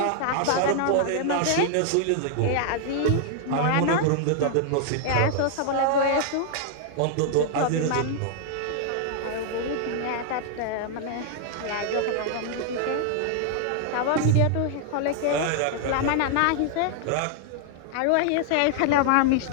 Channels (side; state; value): both; different; correlation 0.00